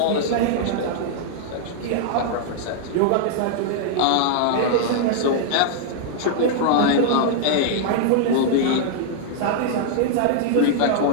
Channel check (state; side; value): different; both; correlation -0.01